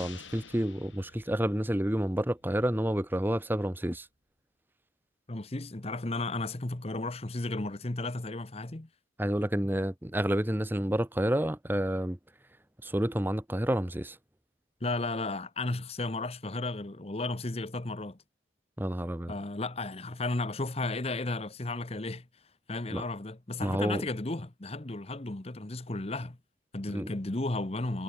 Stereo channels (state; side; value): normal; both; correlation 0.78